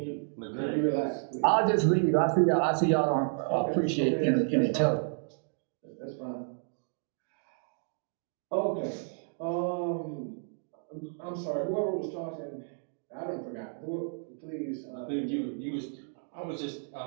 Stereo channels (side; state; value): left; silent; 57 dB below the other